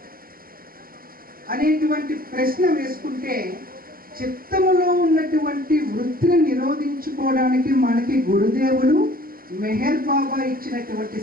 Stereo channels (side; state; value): left; late; 0.42 ms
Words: అనేటువంటి ప్రశ్న వేసుకుంటే, చిత్తములో ఉన్నటువంటి వృత్తిని నిరోధించుకోవడానికి మనకి గురుదేవులు మెహర్ బాబా ఇచ్చినటువంటి